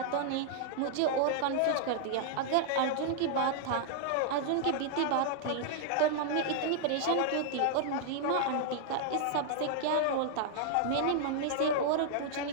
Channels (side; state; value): both; different; correlation -0.01